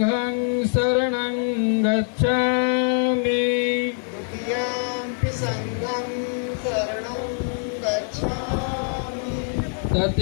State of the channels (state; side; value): silent; right; 55 dB below the other